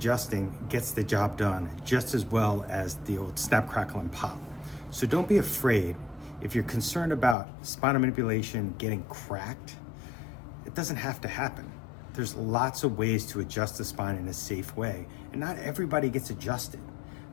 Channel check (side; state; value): right; drops out; at 7.4 s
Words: gets the job done just as well as the old snap, crackle, and pop. So don't be afraid. If you're concerned about spinal manipulation getting cracked, it doesn't have to happen. There's lots of ways to adjust the spine in a safe way, and not everybody gets adjusted.